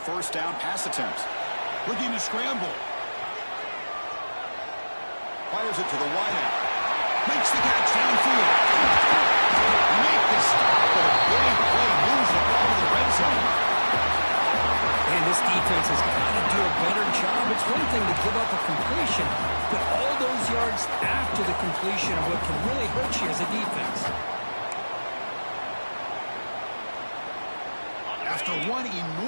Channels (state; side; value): inverted; both; correlation -1.00